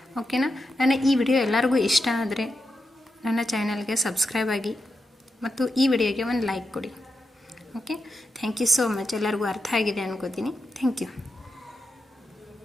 ಓಕೆನಾ, ನನ್ನ ಈ ವಿಡಿಯೋ ಎಲ್ಲರಿಗೂ ಇಷ್ಟ ಆದರೆ ನನ್ನ ಚಾನಲ್ಗೆ ಸಬ್ಸ್ಕ್ರೈಬ್ ಆಗಿ ಮತ್ತು ಈ ವಿಡಿಯೋಗೆ ಒಂದು ಲೈಕ್ ಕೊಡಿ. Okay, thank you so much. ಎಲ್ಲರಿಗೂ ಅರ್ಥ ಆಗಿದೆ ಅನ್ಕೋತೀನಿ. Thank you.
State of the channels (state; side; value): normal; both; correlation 0.87